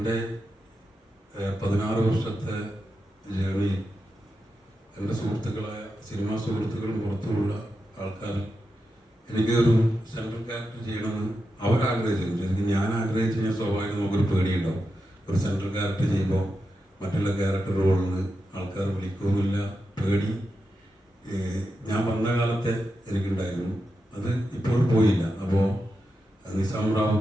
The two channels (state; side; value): normal; both; correlation 0.88